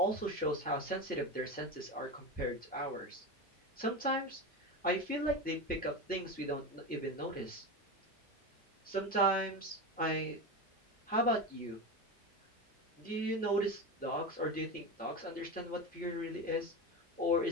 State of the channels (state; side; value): normal; both; correlation 0.21